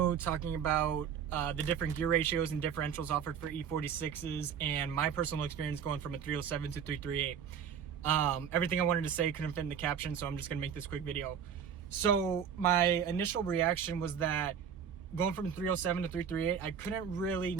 talking about the different gear ratios and differentials offered for E46s and my personal experience going from a 307 to 338. Everything I wanted to say couldn't fit in the caption, so I'm just gonna make this quick video. So my initial reaction was that going from 307 to 338, I couldn't really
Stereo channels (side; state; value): left; quieter; 7.7 dB